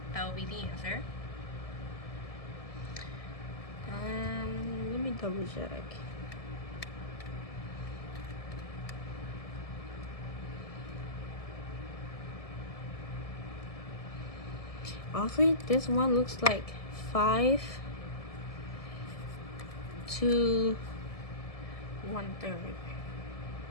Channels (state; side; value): late; right; 1.7 ms